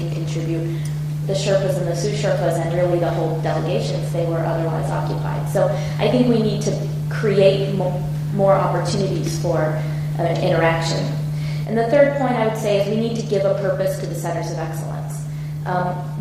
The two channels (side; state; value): both; identical; correlation 1.00